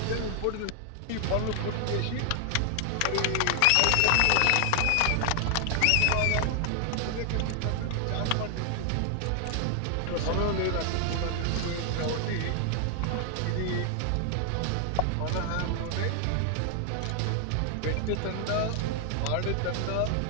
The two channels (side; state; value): both; different; correlation 0.00